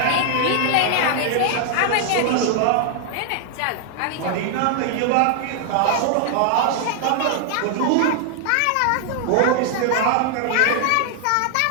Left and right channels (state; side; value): different; both; correlation 0.00